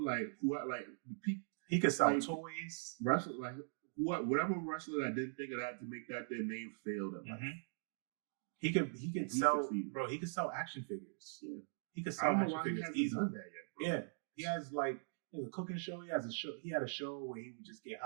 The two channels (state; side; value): silent; left; digital silence